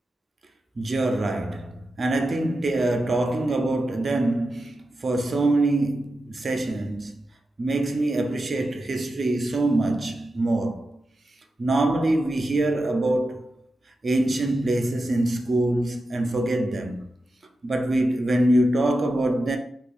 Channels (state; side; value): normal; both; correlation 0.90